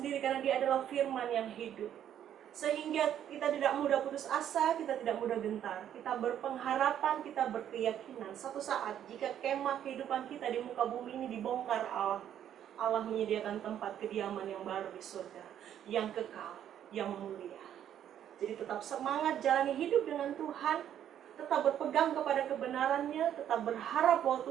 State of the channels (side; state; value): left; quieter; 10.2 dB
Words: karena dia adalah firman yang hidup. Sehingga kita tidak mudah putus asa, kita tidak mudah gentar, kita berpengharapan, kita berkeyakinan satu saat jika kemah kehidupan kita di muka bumi ini dibongkar Allah, Allah menyediakan tempat kediaman yang baru di surga, yang kekal, yang mulia. Jadi tetap semangat jalani hidup dengan Tuhan, tetap berpegang kepada kebenarannya, tetap berharap bahwa